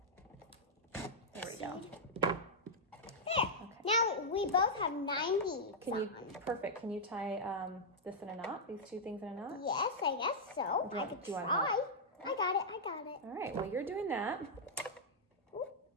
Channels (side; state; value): both; normal; correlation -0.06